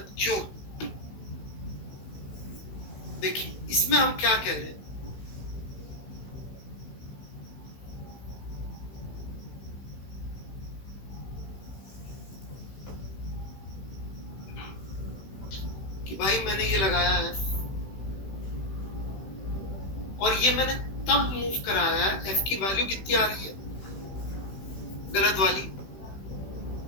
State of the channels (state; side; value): late; right; 16 ms